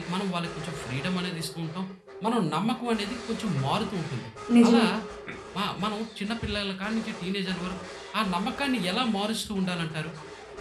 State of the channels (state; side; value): identical; both; correlation 1.00